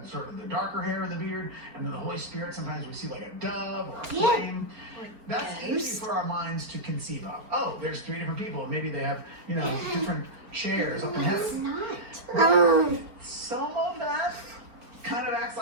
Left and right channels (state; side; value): late; left; 4.4 ms